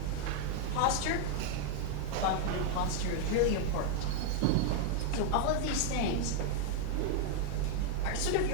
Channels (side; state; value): both; different; correlation 0.00